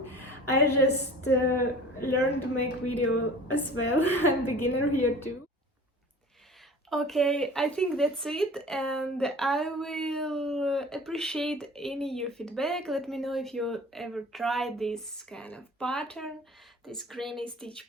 I just learned to make video as well. I'm beginner here too. Okay, I think that's it, and I will appreciate any your feedback. Let me know if you ever tried this kind of pattern. this granny stitch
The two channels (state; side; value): normal; both; correlation 0.42